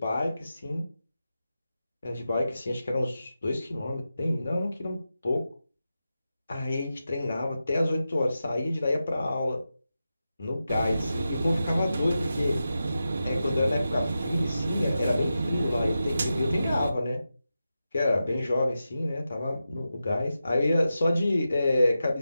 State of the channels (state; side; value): inverted; both; correlation -0.91